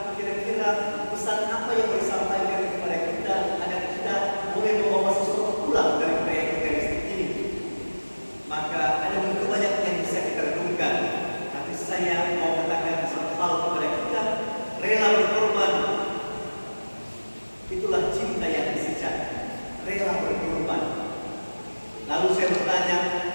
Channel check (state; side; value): inverted; both; correlation -1.00